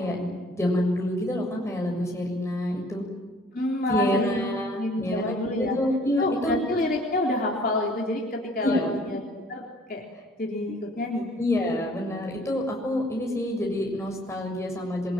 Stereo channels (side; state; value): both; normal; correlation 0.56